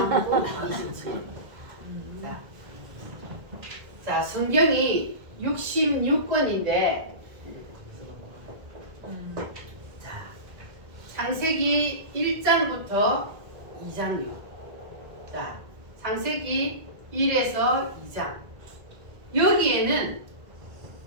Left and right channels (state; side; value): late; left; 1.6 ms